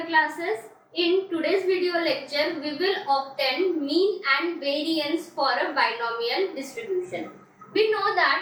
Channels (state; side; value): identical; both; correlation 1.00